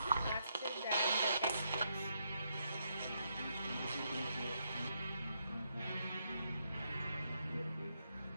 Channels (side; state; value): both; inverted; correlation -0.78